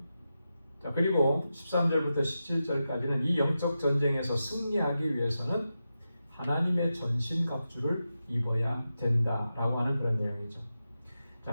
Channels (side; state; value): both; inverted; correlation -0.90